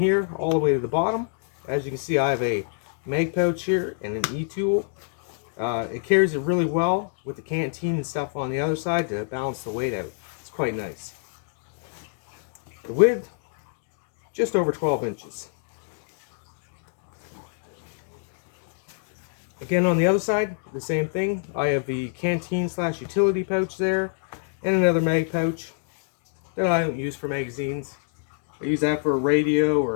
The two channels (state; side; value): silent; right; digital silence